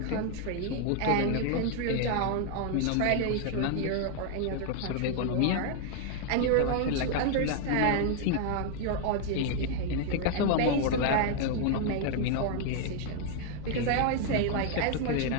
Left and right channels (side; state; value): both; different; correlation 0.00